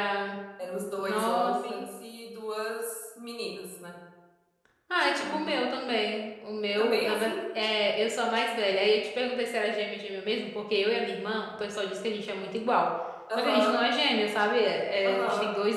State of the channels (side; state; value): both; identical; correlation 1.00